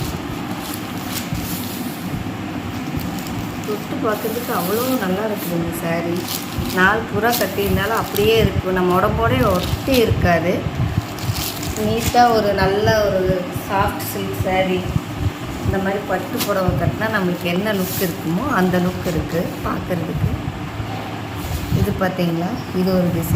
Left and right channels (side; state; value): both; identical; correlation 1.00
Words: தொட்டு பார்க்கறதுக்கு அவ்வளோ நல்லா இருக்குது இந்த சாரீ. நாள் பூரா கட்டியிருந்தாலும் அப்படியே இருக்கும், நம்ம உடம்போடே ஒட்டி இருக்காது. நீட்டாக ஒரு நல்ல ஒரு சாஃப்ட் சில்க் சாரீ. இந்த மாதிரி பட்டு புடவை கட்டினா நம்மளுக்கு என்ன லுக் இருக்குமோ அந்த லுக் இருக்குது பார்க்குறதுக்கு. இது பார்த்தீங்களா, இது ஒரு